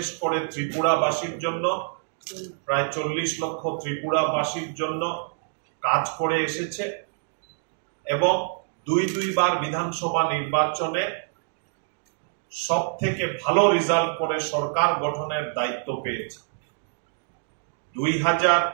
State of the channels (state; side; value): silent; left; digital silence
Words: করে ত্রিপুরাবাসীর জন্য, প্রায় 40 লক্ষ ত্রিপুরাবাসীর জন্য কাজ করে এসেছে এবং দুইবার বিধানসভা নির্বাচনে সব থেকে ভালো রেজাল্ট করে সরকার গঠনের দায়িত্ব পেয়েছে।